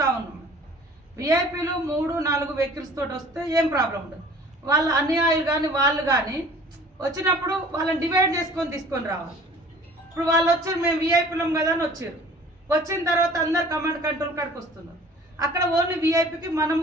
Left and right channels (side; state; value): both; normal; correlation 0.49